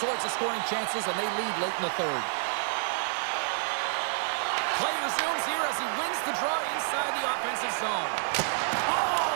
of scoring chances, and they lead late in the third. Play resumes here as he wins the draw inside the offensive zone.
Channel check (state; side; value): silent; left; digital silence